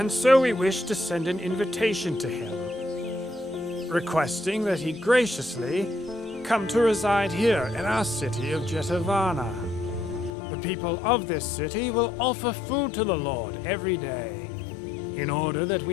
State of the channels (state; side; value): drops out; right; at 10.4 s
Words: so we wish to send an invitation to him, requesting that he graciously come to reside here in our city of Jetavana. The people of this city will offer food to the Lord every day, in order that